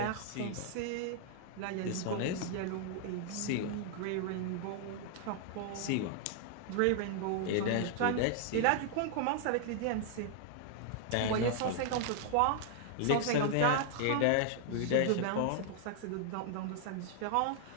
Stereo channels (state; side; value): different; both; correlation -0.01